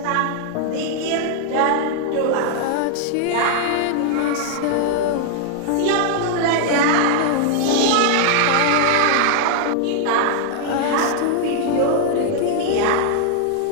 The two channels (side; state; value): both; different; correlation 0.00